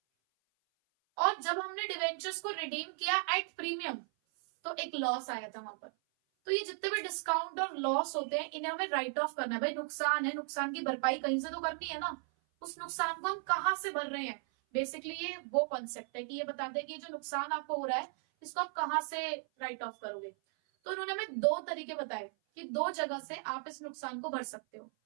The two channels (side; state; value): left; silent; 54 dB below the other